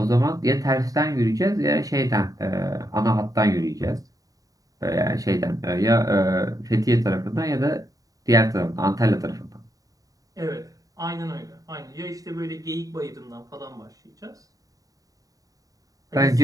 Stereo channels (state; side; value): late; left; 0.17 ms